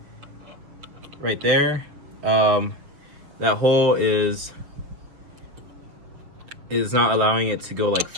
right there, that hole is not allowing it to go like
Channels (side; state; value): left; late; 6.9 ms